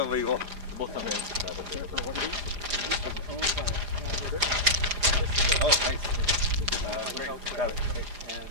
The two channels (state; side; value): late; left; 4.9 ms